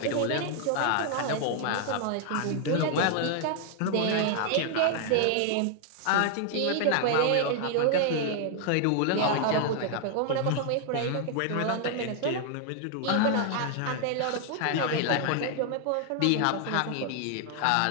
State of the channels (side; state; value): both; different; correlation 0.00